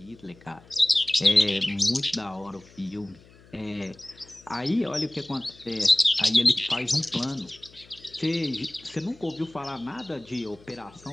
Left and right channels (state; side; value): noise; left; hum, 25 dB below the sound